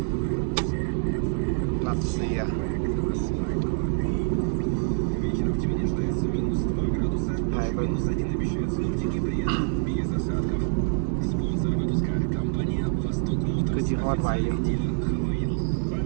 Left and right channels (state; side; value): silent; left; 58 dB below the other